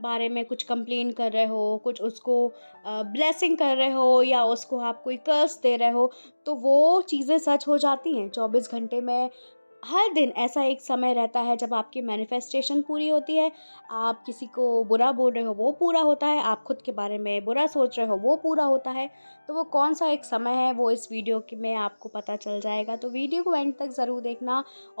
में कुछ कंप्लेन कर रहे हो, कुछ उसको ब्लेसिंग कर रहे हो या उसको आप कोई कर्स दे रहे हो, तो वो चीज़ें सच हो जाती हैं 24 घंटे में। हर दिन ऐसा एक समय रहता है जब आपकी मैनिफेस्टेशन पूरी होती है। आप किसी को बुरा बोल रहे हो वो पूरा होता है, आप खुद के बारे में बुरा सोच रहे हो वो पूरा होता है। तो वो कौन-सा एक समय है वो इस वीडियो के में आपको पता चल जाएगा। तो वीडियो को एंड तक ज़रूर देखना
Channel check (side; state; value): both; inverted; correlation -1.00